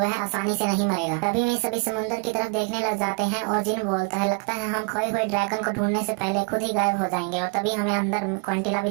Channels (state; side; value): quieter; left; 32.4 dB